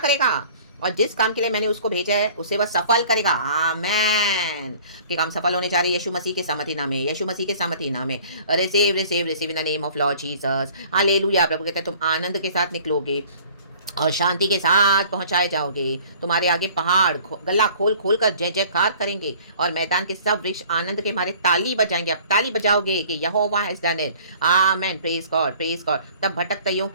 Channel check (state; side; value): inverted; both; correlation -0.50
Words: और जिस काम के लिए मैंने उसको भेजा है उसे वह सफल करेगा। आमेन। कि काम सफल होने जा रहे यीशु मसीह के सामर्थी नाम में, यीशु मसीह के सामर्थी नाम में। Receive receive receive in the name of lord Jesus. Hallelujah. प्रभु कहता है तुम आनंद के साथ निकलोगे और शांति के साथ पहुंचाए जाओगे। तुम्हारे आगे पहाड़ गला खोल खोल कर जय जयकार करेंगे और मैदान के सब वृक्ष आनंद के मारे ताली बजाएंगे। आप ताली बजाओगे कि Jehovah has done it. Amen. Praise God, praise God. तब भटकतइयों